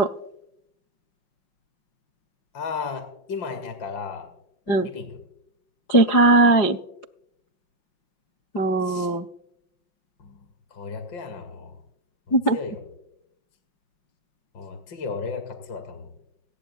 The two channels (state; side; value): late; right; 5.5 ms